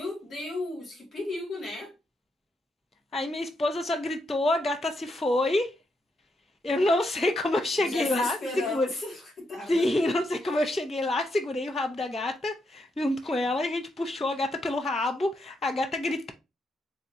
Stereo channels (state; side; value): normal; both; correlation 0.80